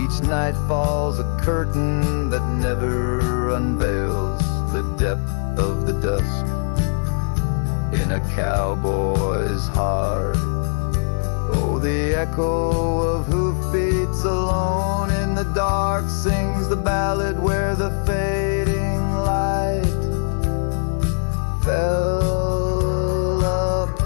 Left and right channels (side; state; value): right; silent; 65 dB below the other